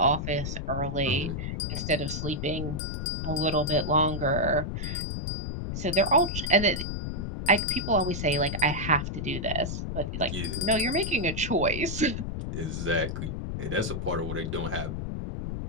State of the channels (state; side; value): noise; left; rumble, 4 dB below the sound